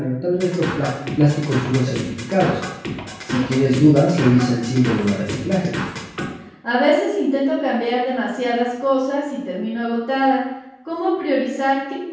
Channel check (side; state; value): both; identical; correlation 1.00